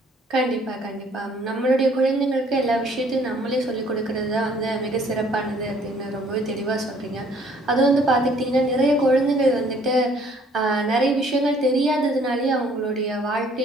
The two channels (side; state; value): both; normal; correlation 0.60